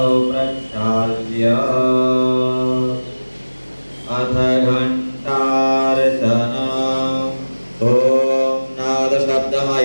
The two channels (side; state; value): both; inverted; correlation -1.00